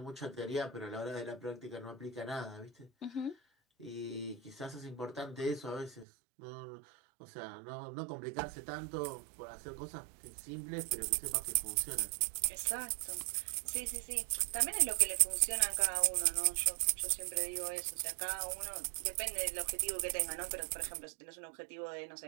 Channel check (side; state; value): left; drops out; at 6.1 s